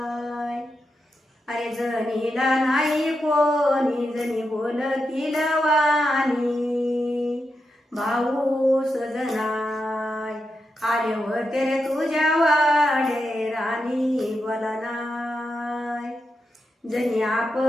अरे जनीला नाही कोणी जनी बोल किलवानी भाऊ सजनाय आले होते रे तुझ्या वाडे राणी बोला नाय जनी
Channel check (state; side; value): normal; both; correlation 0.87